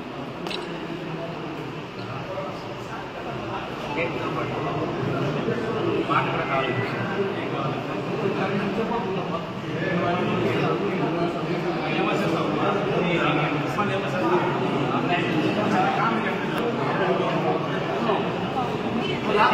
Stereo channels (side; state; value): both; identical; correlation 1.00